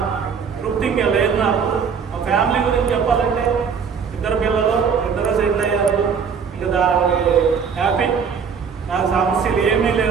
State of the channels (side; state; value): left; quieter; 6.4 dB